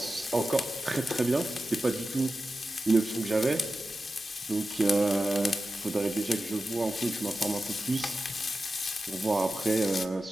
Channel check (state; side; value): normal; both; correlation 0.93